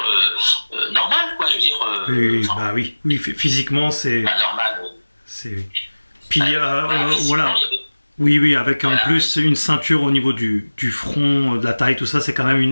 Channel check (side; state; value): both; inverted; correlation -1.00